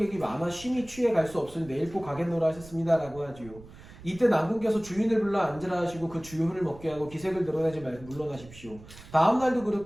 많아 쉼이 취해 갈 수 없으니 내일 꼭 가겠노라 하셨습니다. 라고 하지요. 이때 난군께서 주인을 불러 앉으라 하시고 그 주효를 먹게 하고 기색을 드러내지 말고 물러나십시오. 다음날도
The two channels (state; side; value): noise; right; rumble, 19 dB below the sound